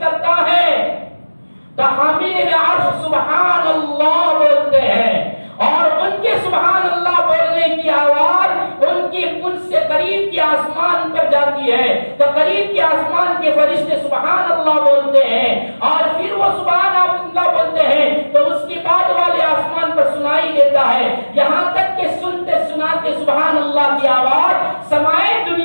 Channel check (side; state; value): both; inverted; correlation -1.00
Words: کرتا ہے تو حاملین عرش سبحان اللہ بولتے ہیں، اور ان کے سبحان اللہ بولنے کی آواز ان سے قریب کے آسمان پر جاتی ہے، تو قریب کے آسمان کے فرشتے سبحان اللہ بولتے ہیں، اور پھر وہ سبحان اللہ بولتے ہیں تو اس کے بعد والے آسمان پر سنائی دیتا ہے، یہاں تک کہ سنتے سناتے سبحان اللہ کی آواز سمائے